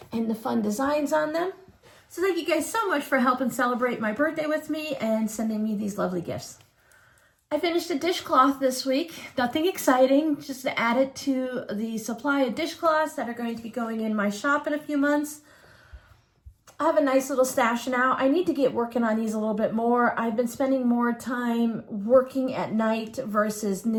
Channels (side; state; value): both; identical; correlation 1.00